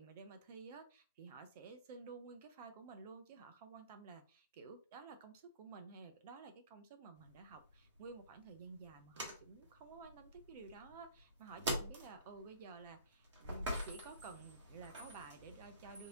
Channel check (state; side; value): inverted; both; correlation -0.48